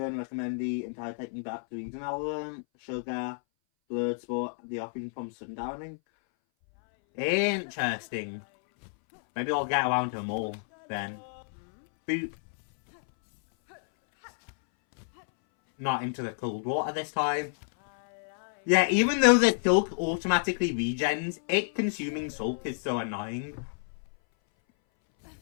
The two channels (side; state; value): right; silent; 58 dB below the other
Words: recommend the entire technique back to Eden Element, Sugar, Blurred Sport, the offering from Sundowning. Interesting. Maybe I'll get around to them all then. Boop. Not into the cold water this time. Yeah, even though the silk automatically regens, it consuming silk is so annoying.